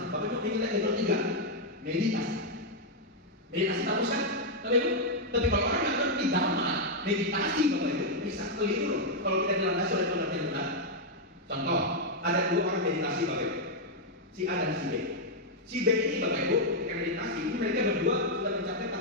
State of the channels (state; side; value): normal; both; correlation -0.01